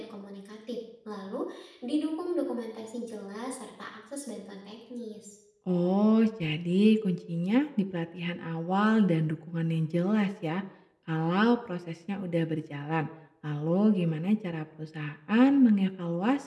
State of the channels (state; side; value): identical; both; correlation 1.00